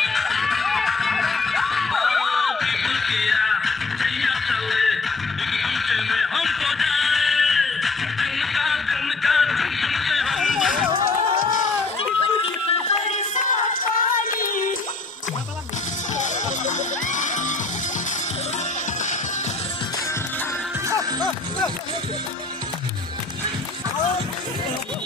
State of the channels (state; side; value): quieter; right; 3.8 dB